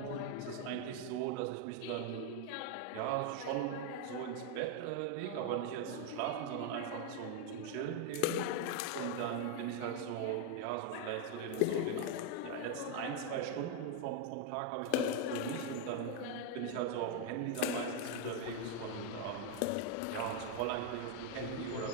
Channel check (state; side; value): different; both; correlation 0.01